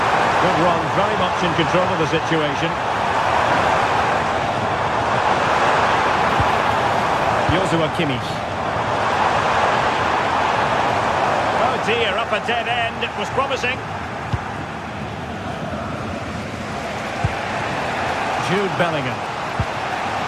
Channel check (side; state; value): both; identical; correlation 1.00